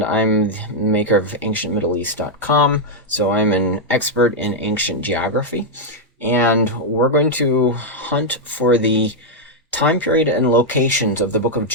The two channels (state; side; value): normal; both; correlation -0.04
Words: I'm the maker of AncientMiddleEast.com, so I'm an expert in ancient geography, and we're going to hunt for the time period and locations of the Book of